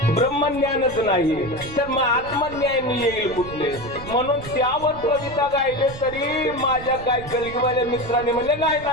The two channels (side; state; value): right; noise; rumble, 14 dB below the sound